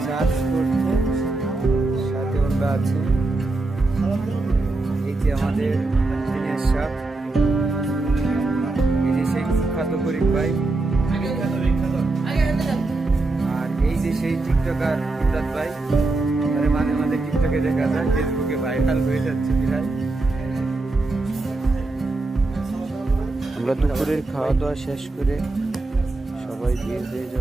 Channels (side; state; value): left; quieter; 3.1 dB